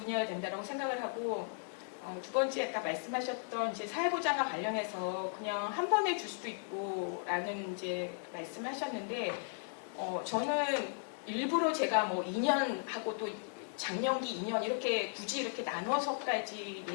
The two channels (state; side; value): silent; right; digital silence